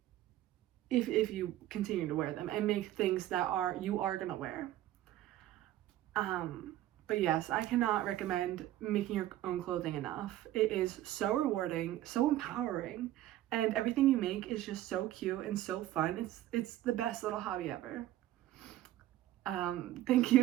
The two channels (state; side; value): quieter; left; 14.0 dB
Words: if you continue to wear them and make things that you are gonna wear. But yes, I cannot recommend making your own clothing enough. It is so rewarding, so empowering, and everything you make is just so cute and so fun. It's the best little hobby ever. Thank